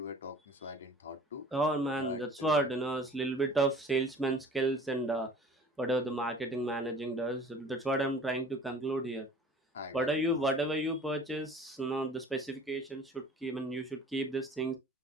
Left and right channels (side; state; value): both; normal; correlation 0.46